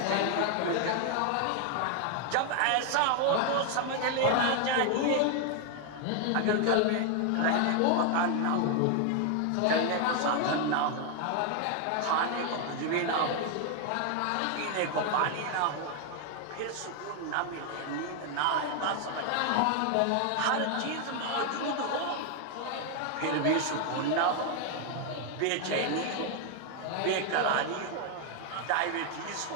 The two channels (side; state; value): both; different; correlation 0.00